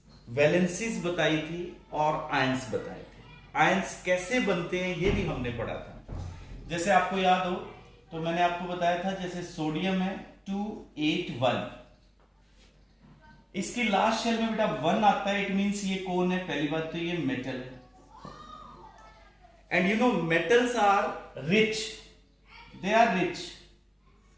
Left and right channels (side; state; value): both; identical; correlation 1.00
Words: वैलेंसीज बताई थी और आयंस बताए थे। आयंस कैसे बनते हैं ये भी हमने पढ़ा था। जैसे आपको याद हो तो मैंने आपको बताया था, जैसे सोडियम है 281, इसकी लास्ट शेल में बेटा 1 आता है। इट मींस ये कौन है? पहली बात तो ये मेटल है। And you know metals are rich, they are rich,